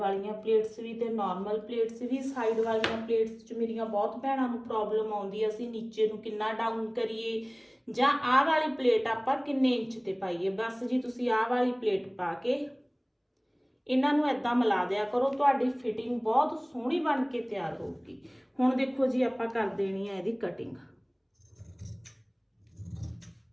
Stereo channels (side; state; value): both; identical; correlation 1.00